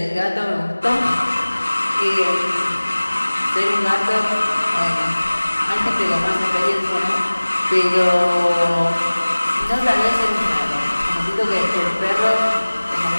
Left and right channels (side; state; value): both; inverted; correlation -1.00